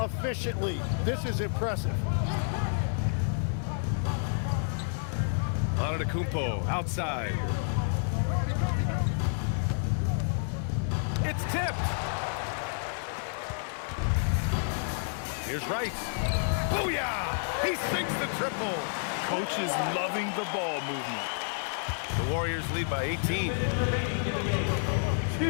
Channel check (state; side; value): silent; right; 58 dB below the other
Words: This is impressive. Antetokounmpo outside. It's tipped. Here's Rice. Booyah! He sinks the triple. Coach is loving the ball movement. The Warriors lead by 18. Remaining in the game.